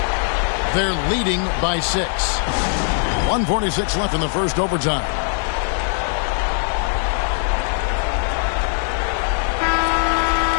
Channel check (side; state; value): right; silent; 66 dB below the other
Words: They're leading by 6. 1:46 left in the first overtime.